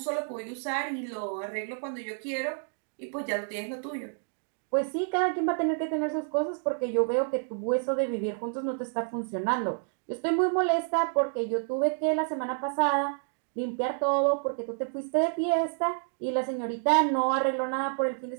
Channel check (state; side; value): silent; left; 58 dB below the other